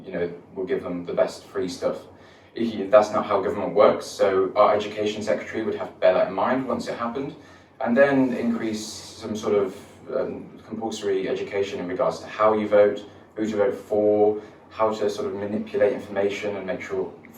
you know, will give them the best free stuff. That's not how government works, so our education secretary would have to bear that in mind once it happened, and then increase some sort of compulsory education in regards to how you vote, who to vote for, how to sort of manipulate information and make sure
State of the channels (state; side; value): identical; both; correlation 1.00